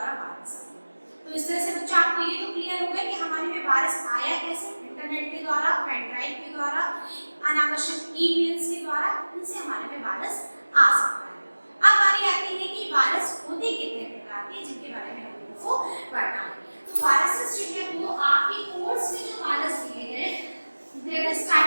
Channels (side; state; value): both; inverted; correlation -1.00